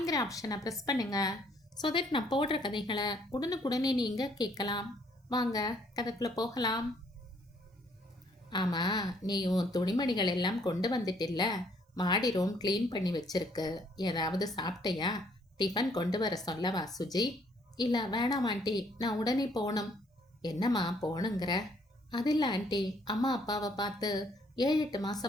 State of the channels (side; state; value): both; normal; correlation 0.65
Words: ஆப்ஷனை ப்ரெஸ் பண்ணுங்க. ஸோ தட் நான் போடுற கதைகளை உடனுக்குடனே நீங்கள் கேட்கலாம். வாங்க கதைக்குள்ளே போகலாம். ஆமாம், நீ உன் துணிமணிகள் எல்லாம் கொண்டு வந்துட்டில்ல, மாடி ரூம் க்ளீன் பண்ணி வச்சிருக்கு. ஏதாவது சாப்பிட்டையா? டிஃபன் கொண்டு வர சொல்லவா சுஜி? இல்லை வேணாம் ஆண்டி, நான் உடனே போகணும். என்னம்மா போகணுங்கிற? அது இல்லை ஆண்டி, அம்மா அப்பாவை பார்த்து 7-8